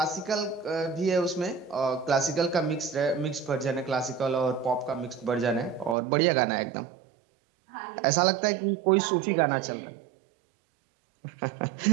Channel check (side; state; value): left; drops out; at 6.0 s